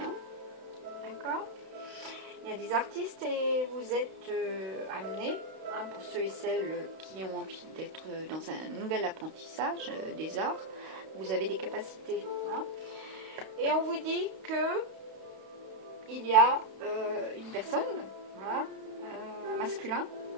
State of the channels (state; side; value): late; left; 32 ms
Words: Hein. D'accord? Il y a des artistes et vous êtes amenés, hein, pour ceux et celles qui ont envie d'être dans un nouvel apprentissage des arts, vous avez des capacités. Hein. Et on vous dit que il y a une personne, voilà, un masculin,